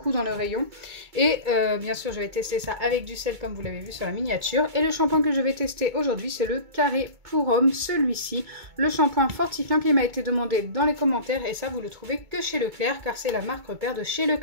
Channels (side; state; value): left; late; 2.2 ms